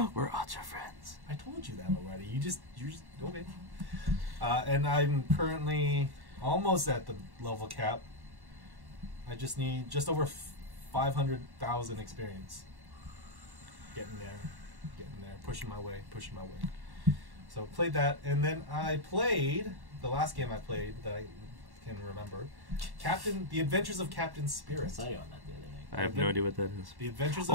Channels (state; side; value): late; left; 1.1 ms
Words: We're ultra friends. I told you that already. You just okay. And I'm currently almost at the level cap. I just need just over 500,000 experience. Getting there, pushing my way. So played that, and then I played the last game I played that I can remember, The Adventures of Captain I Spirit. saw you on that the other night. I have no idea what that is. The Adventures of